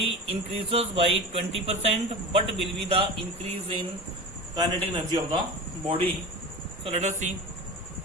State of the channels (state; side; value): normal; both; correlation 0.30